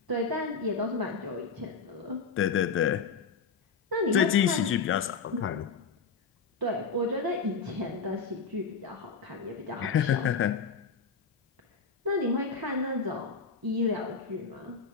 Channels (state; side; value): quieter; right; 5.3 dB